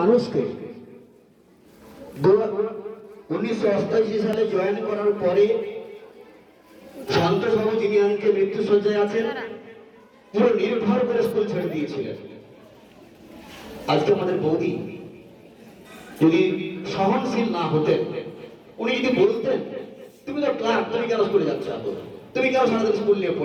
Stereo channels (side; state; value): both; identical; correlation 1.00